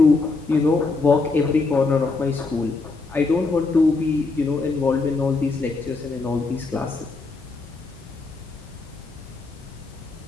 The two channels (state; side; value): quieter; right; 3.8 dB